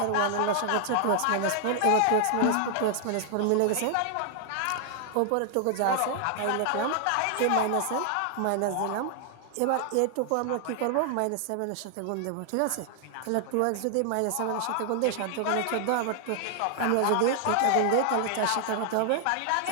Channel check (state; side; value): different; both; correlation 0.00